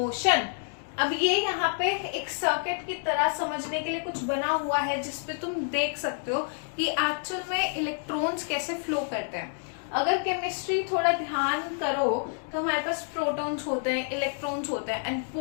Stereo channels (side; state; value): right; silent; digital silence